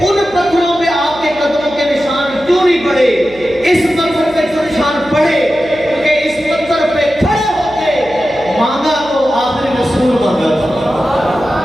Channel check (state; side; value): noise; right; hum, 21 dB below the sound